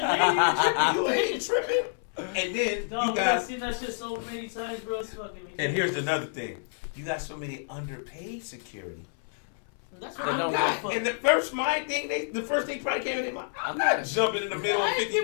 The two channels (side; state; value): right; silent; 58 dB below the other